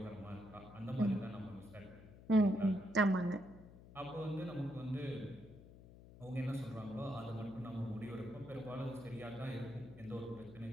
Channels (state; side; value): noise; left; hum, 18 dB below the sound